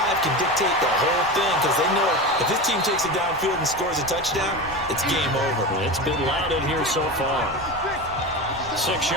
can dictate the whole thing because they know if this team takes it downfield and scores a touchdown, it's game over. It's been loud in here so far. 6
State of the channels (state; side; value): noise; right; rumble, 18 dB below the sound